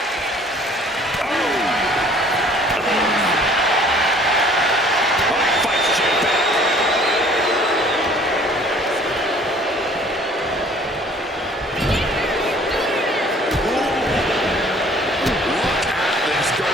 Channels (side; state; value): both; normal; correlation 0.54